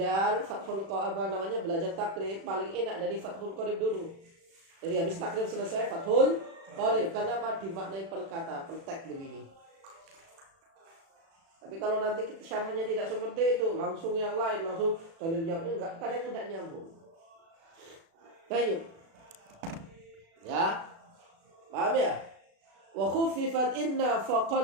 fathul qarib belajar takrib paling enak dari fathul qarib dulu. Jadi habis takrib selesai fathul qarib, karena dimaknai per kata, per teks begini. Tapi kalau nanti syarahnya tidak seperti itu, langsung yang lain, langsung dalilnya enggak, kadang tidak nyambung. Baik. Ya. Paham ya? Wa khuffifat inna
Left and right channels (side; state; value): left; late; 36 ms